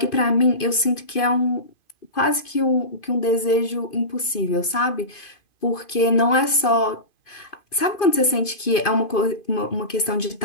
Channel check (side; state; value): right; late; 2.5 ms